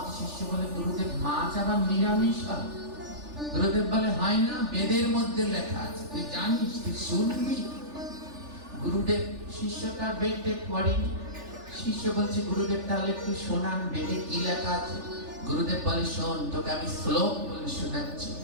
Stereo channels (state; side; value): late; left; 3.4 ms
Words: শিষ্য বলে, গুরুদেব মাছ আবার নিরামিষ হয়? গুরুদেব বলে, হয় না, বেদের মধ্যে লেখা আছে, তুই জানিস, তুই শুনবি। গুরুদেব শিষ্যটা বেদে পড়েনি। শিষ্য বলছে, গুরুদেব তাহলে একটু শোনান, বেদে কি লেখা আছে? গুরুদেব বলে, শোন, তোকে আমি শ্লোক বলে শোনাচ্ছি।